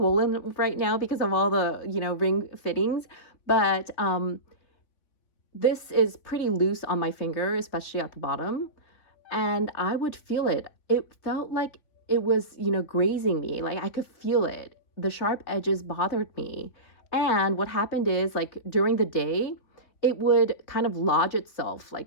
right now because of all the, you know, ring fittings, but this is pretty loose on my finger, especially at the bottom. And I would feel it. It felt like it was, you know, grazing me. Like I could feel it. The sharp edges bothered me. And what happened is, like during the day, it would kind of lodge itself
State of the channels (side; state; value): right; late; 3.2 ms